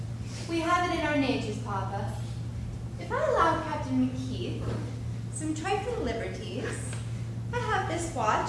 We have it in our natures, Papa. If I allow Captain McKeith some trifling liberties, I have this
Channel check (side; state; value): both; identical; correlation 1.00